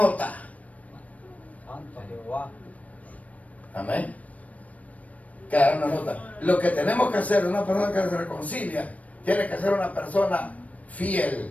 Amén. Quedará una nota. Lo que tenemos que hacer, una persona que se reconcilia, tiene que ser una persona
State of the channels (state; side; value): late; right; 0.069 ms